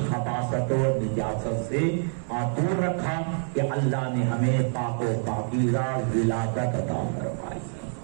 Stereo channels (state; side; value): silent; left; digital silence